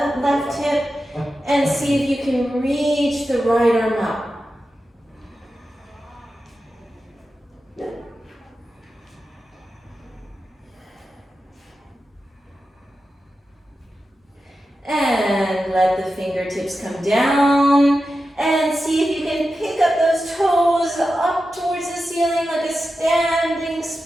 left hip. And see if you can reach the right arm up. And let the fingertips come down. And see if you can pick up those toes up towards the ceiling like a standing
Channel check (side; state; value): both; normal; correlation 0.91